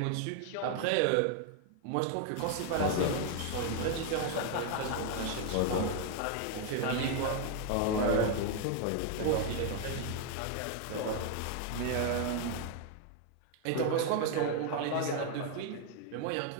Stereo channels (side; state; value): both; different; correlation 0.01